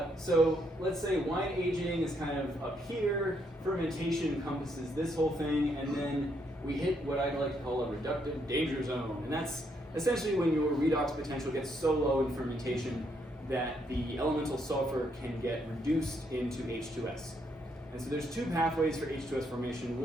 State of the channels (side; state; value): both; normal; correlation 0.74